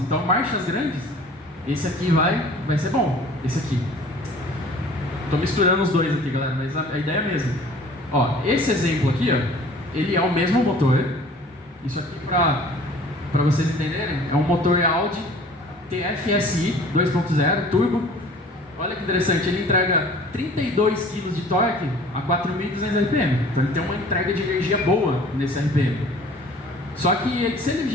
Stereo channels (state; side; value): normal; both; correlation 0.49